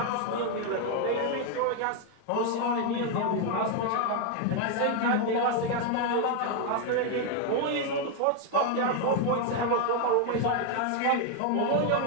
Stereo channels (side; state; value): both; different; correlation 0.01